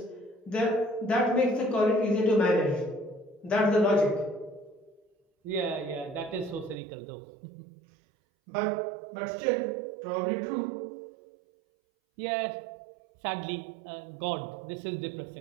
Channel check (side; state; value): left; drops out; at 6.8 s